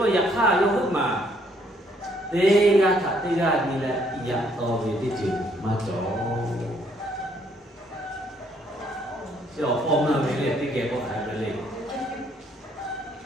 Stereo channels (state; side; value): normal; both; correlation 0.67